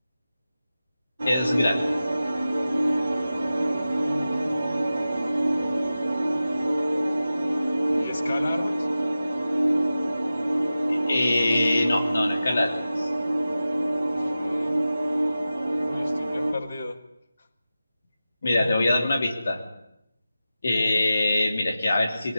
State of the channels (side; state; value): both; inverted; correlation -0.94